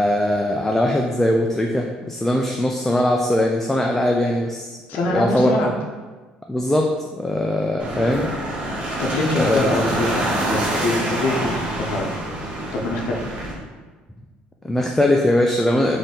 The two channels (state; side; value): normal; both; correlation 0.78